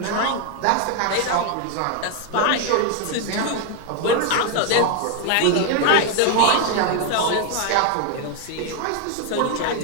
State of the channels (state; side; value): different; both; correlation 0.00